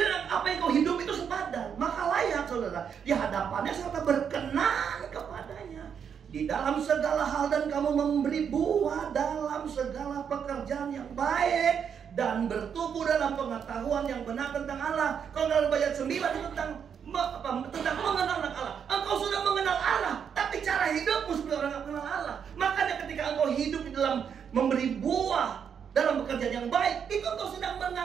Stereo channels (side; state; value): left; quieter; 7.5 dB